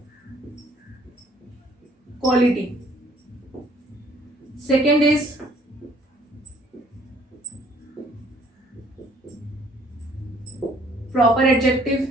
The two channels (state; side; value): normal; both; correlation 0.60